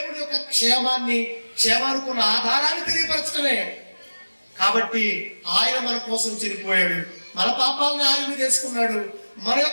యొక్క క్షేమానుకున్న ఆధారాన్ని తెలియపరచడమే. కాబట్టి ఆయన మన కోసం చనిపోయాడు, మన పాపాలను ఆయన మీద వేసుకున్నాడు, మన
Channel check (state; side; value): inverted; both; correlation -1.00